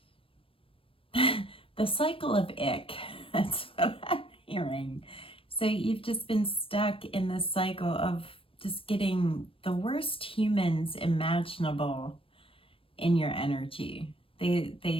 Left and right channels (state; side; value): late; right; 0.26 ms